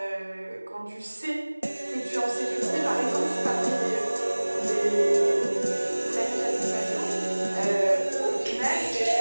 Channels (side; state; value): both; inverted; correlation -1.00